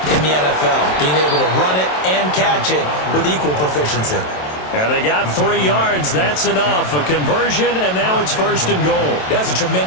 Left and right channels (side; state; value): right; late; 27 ms